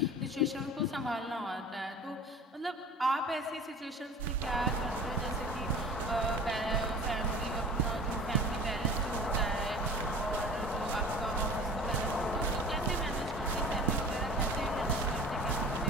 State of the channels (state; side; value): normal; both; correlation 0.41